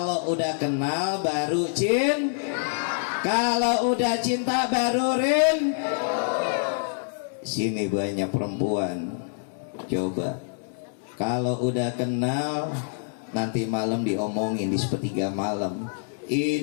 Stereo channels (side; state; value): right; silent; 61 dB below the other